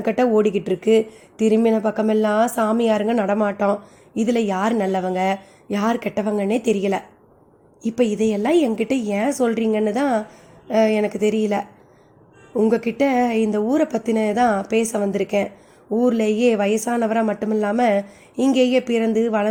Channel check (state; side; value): identical; both; correlation 1.00